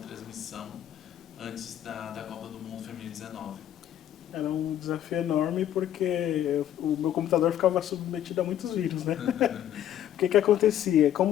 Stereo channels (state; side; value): quieter; right; 11.1 dB